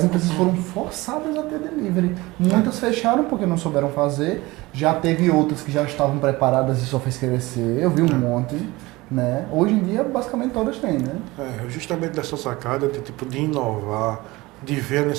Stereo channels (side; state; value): left; quieter; 21.0 dB